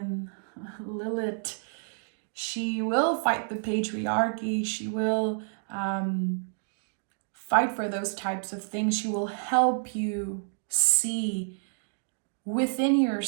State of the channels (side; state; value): left; silent; digital silence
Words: Lilith, she will fight the patriarchy, she will fight for those types of things, she will help you see within